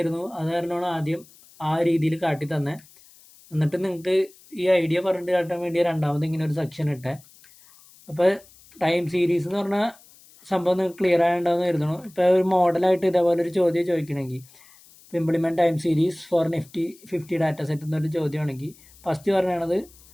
അത് കാരണമാണ് ആദ്യം ആ രീതിയിൽ കാട്ടി തന്നെ. എന്നിട്ട് നിങ്ങൾക്ക് ഈ ഐഡിയ പറഞ്ഞിട്ട് കാട്ടാൻ വേണ്ടി രണ്ടാമത് ഇങ്ങനെ ഒരു സെക്ഷൻ ഇട്ടേ. അപ്പോൾ ടൈം സീരീസ് എന്ന് പറഞ്ഞാൽ സംഭവം നിങ്ങൾക്ക് ക്ലിയർ ആയിട്ടുണ്ടാവുമെന്ന് കരുതുന്നു. ഇപ്പോൾ ഒരു മോഡലായിട്ട് ഇതേപോലെ ഒരു ചോദ്യം ചോദിക്കണമെങ്കിൽ, implement time series for Nifty 50 data set എന്നൊരു ചോദ്യമാണെങ്കിൽ ഫസ്റ്റ് പറയണത്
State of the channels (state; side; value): noise; left; hiss, 25 dB below the sound